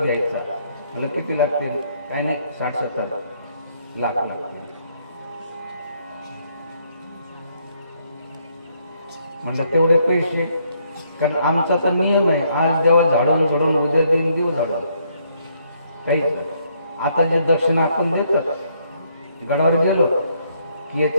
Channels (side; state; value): both; inverted; correlation -0.71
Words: घ्यायचा, मला किती लागतील? काही नाही, 60-70 लाख लागतील. म्हणलं तेवढे पैसे, कारण आमचा तर नियम आहे, आज देवा झाडून झोडून उद्या देऊन देऊ झाडून, काहीच नाही. आता जे दक्षिणा आपण देतात, गडावर गेलो की